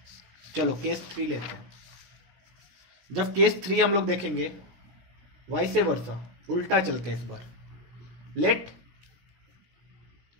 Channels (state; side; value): late; left; 16 ms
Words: चलो केस 3 लेते हैं। जब केस 3 हम लोग देखेंगे, वाइसे वर्सा, उल्टा चलते हैं इस बार। Let